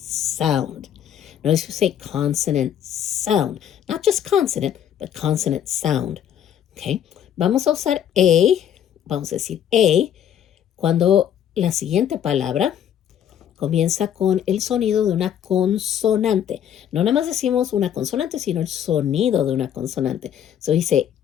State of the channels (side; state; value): right; quieter; 9.7 dB